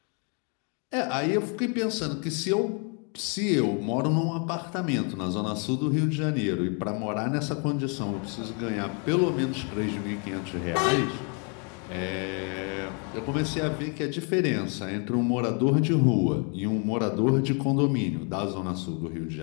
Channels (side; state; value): right; quieter; 37.8 dB